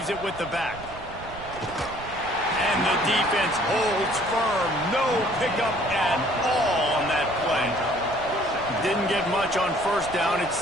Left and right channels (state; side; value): noise; right; rumble, 16 dB below the sound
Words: it with the back. And the defense holds firm. No pickup at all on that play. Didn't get much on first down. It's